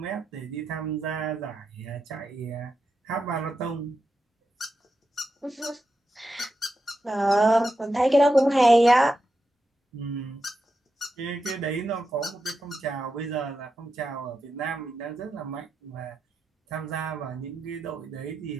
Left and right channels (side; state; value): both; normal; correlation 0.88